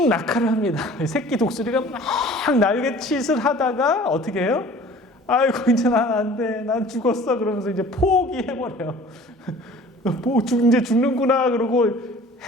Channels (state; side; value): normal; both; correlation 0.47